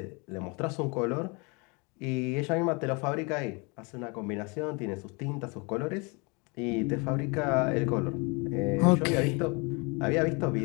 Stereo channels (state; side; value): quieter; right; 30.4 dB